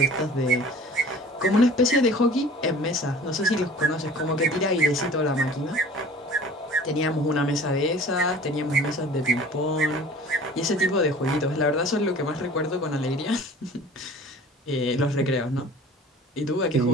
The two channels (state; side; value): normal; both; correlation 0.45